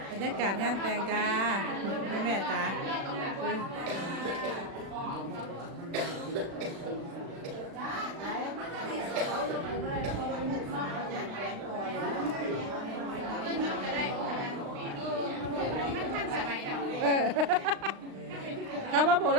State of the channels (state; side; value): late; left; 36 ms